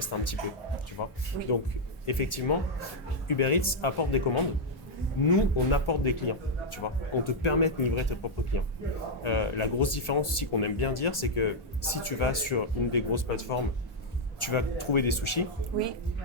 un petit peu. Tu vois. Oui. Donc, effectivement, Uber Eats apporte des commandes. Nous, on apporte des clients, tu vois. On te permet de livrer tes propres clients. La grosse différence aussi qu'on aime bien dire, c'est que si tu vas sur une des grosses plateformes, tu vas trouver des sushis. Oui.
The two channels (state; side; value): normal; both; correlation -0.02